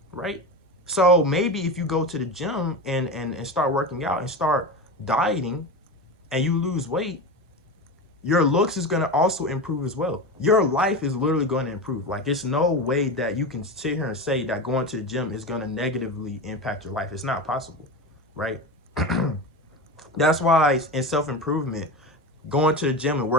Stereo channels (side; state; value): both; normal; correlation 0.23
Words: right? So maybe if you go to the gym and start working out and start dieting and you lose weight, your looks is going to also improve as well. Your life is literally going to improve. Like, it's no way that you can sit here and say that going to the gym is going to negatively impact your life. It's not possible, right? That's why in self-improvement, going to the gym and